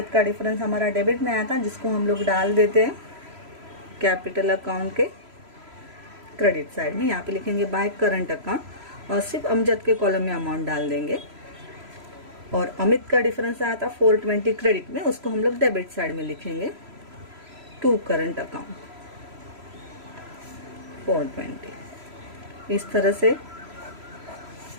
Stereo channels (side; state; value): left; late; 3.0 ms